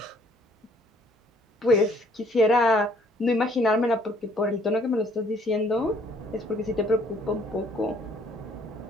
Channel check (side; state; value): both; normal; correlation 0.62